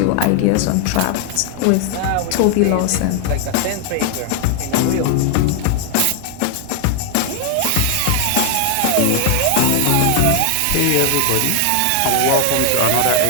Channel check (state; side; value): different; both; correlation 0.00